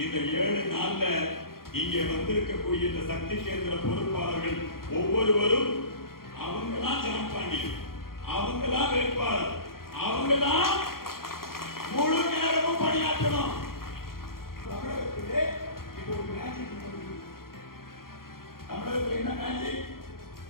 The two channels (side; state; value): right; late; 0.92 ms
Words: இந்த 7 நாள்ல இங்கே வந்திருக்கக்கூடிய இந்த சக்தி கேந்திர பொறுப்பாளர்கள் ஒவ்வொருவரும் அவங்கதான் ஜான் பாண்டியன், அவங்கதான் வேட்பாளர், அவங்கதான் முழு நேரமும் பணியாற்றணும். தமிழகத்திலே இப்போ ஒரு மேஜிக் நடக்குது. தமிழகத்தில் என்ன மேஜிக்?